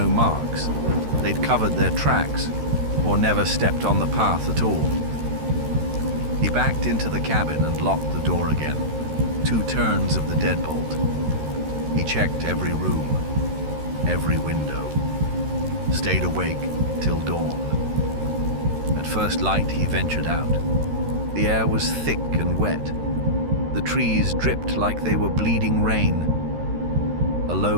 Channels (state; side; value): late; left; 13 ms